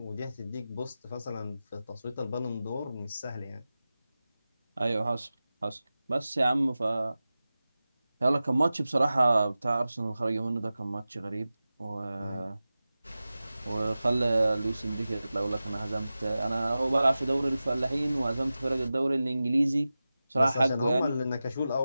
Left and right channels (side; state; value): both; inverted; correlation -0.95